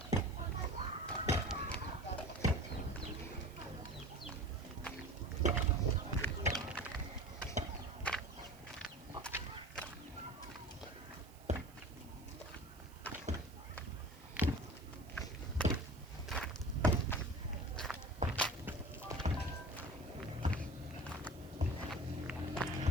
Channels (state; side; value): noise; right; hiss, 23 dB below the sound